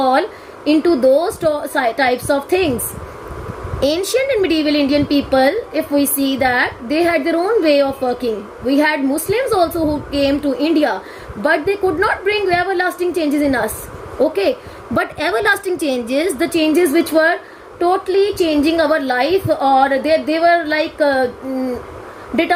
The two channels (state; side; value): identical; both; correlation 1.00